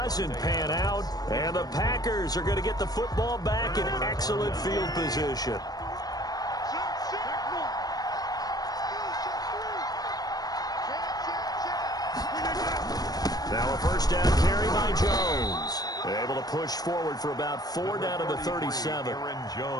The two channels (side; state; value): right; late; 0.19 ms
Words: pan out. And the Packers are going to get the football back in excellent field position. Now a first down carry by Jones. Able to push forward for about 4 down to the 37. Aaron